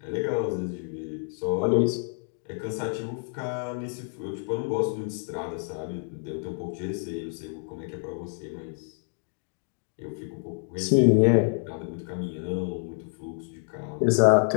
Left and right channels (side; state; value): right; silent; 58 dB below the other